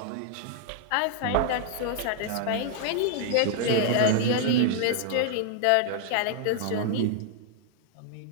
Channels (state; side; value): different; both; correlation 0.00